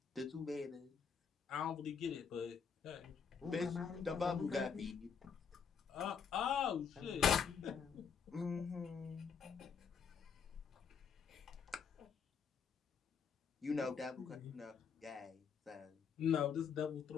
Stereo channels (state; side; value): quieter; right; 6.4 dB